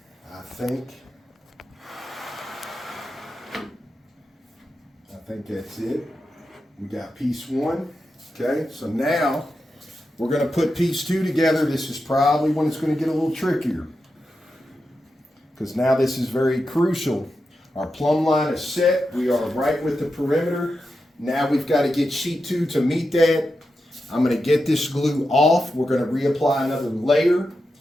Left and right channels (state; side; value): normal; both; correlation 0.89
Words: I think that's it. We got piece one. Okay, so now we're going to put piece two together. This is probably when it's going to get a little trickier, because now this is very crucial. Our plumb line is set. We are right with the perimeter. Now we've got to get sheet 2 to meet that. I'm going to get this glue off. We're going to reapply another layer,